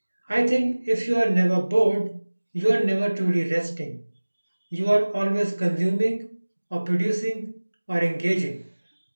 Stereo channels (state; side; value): inverted; both; correlation -1.00